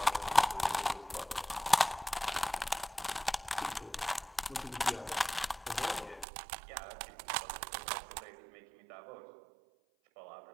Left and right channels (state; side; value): drops out; left; at 6.2 s